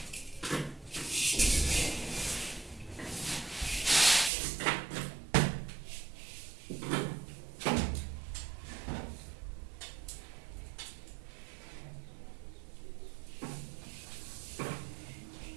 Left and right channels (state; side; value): drops out; left; at 4.3 s